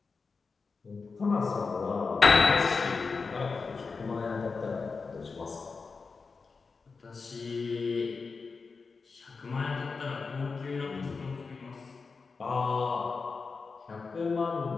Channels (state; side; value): quieter; right; 4.6 dB